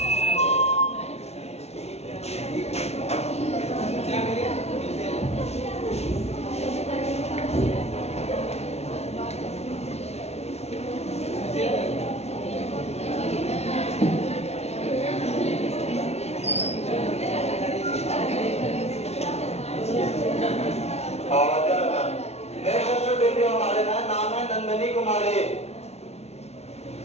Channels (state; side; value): late; right; 0.31 ms